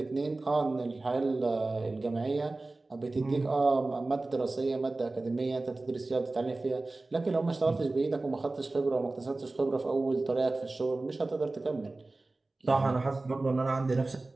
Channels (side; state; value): left; quieter; 3.2 dB